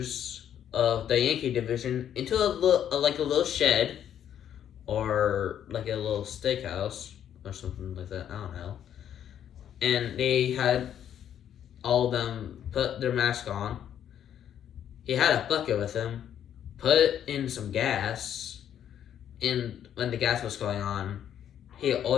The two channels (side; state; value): right; quieter; 9.9 dB